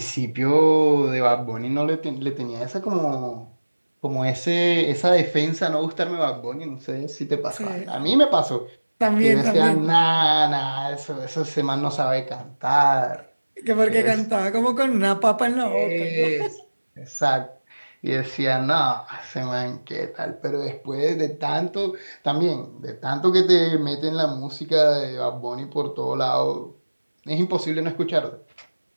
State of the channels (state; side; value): inverted; both; correlation -1.00